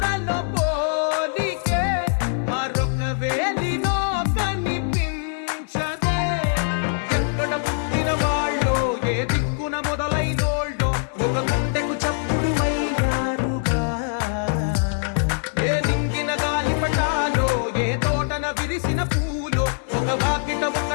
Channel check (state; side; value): silent; right; digital silence